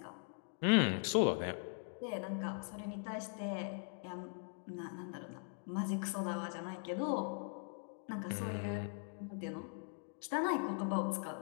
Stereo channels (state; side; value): silent; right; 51 dB below the other